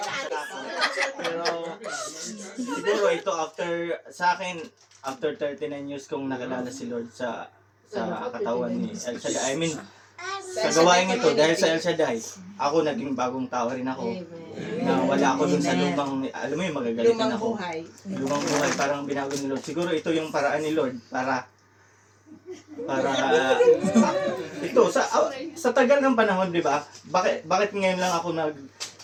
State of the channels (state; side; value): identical; both; correlation 1.00